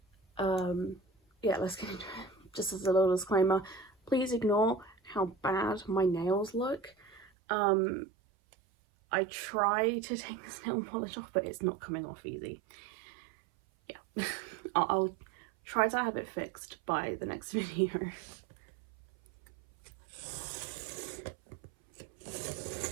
Yeah, let's get into it. Just as a little disclaimer, please ignore how bad my nails look. I try to take this nail polish off, but it's not coming off easy. Yeah, I'll try to have it fixed by the next video.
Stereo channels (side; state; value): left; drops out; at 7.3 s